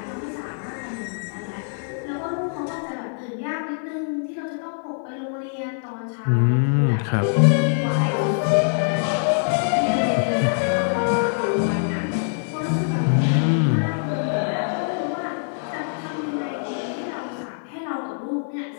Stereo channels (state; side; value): silent; right; 63 dB below the other